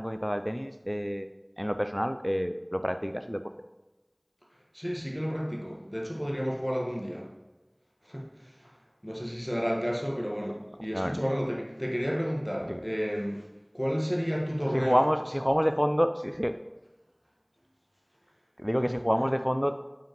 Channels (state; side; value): identical; both; correlation 1.00